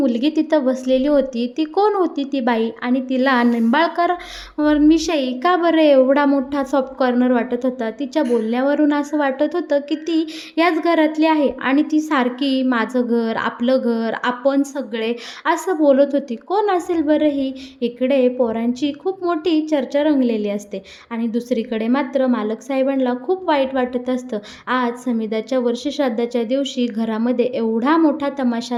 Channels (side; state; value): both; identical; correlation 1.00